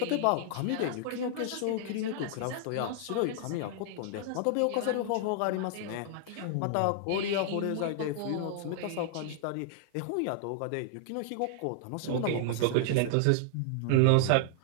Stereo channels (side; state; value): both; different; correlation -0.01